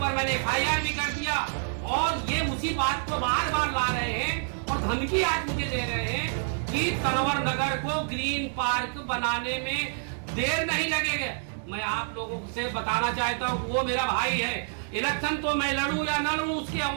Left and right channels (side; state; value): left; silent; 59 dB below the other